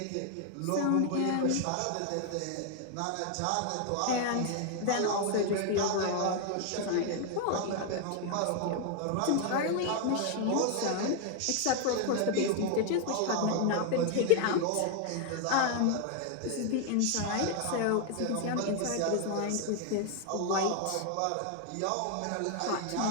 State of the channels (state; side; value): different; both; correlation 0.00